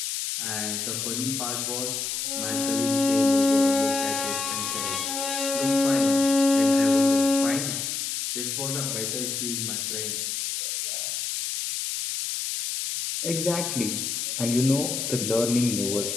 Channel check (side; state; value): left; noise; hiss, 3 dB below the sound